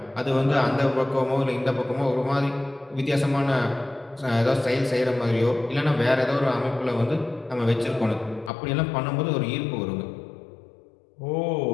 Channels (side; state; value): right; drops out; at 8.5 s